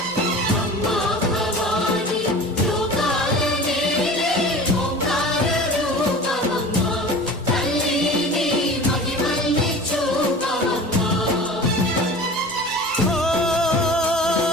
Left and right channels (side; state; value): both; normal; correlation 0.38